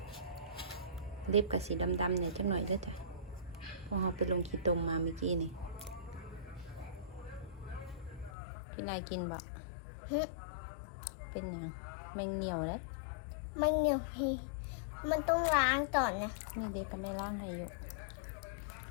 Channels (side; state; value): right; drops out; at 8.3 s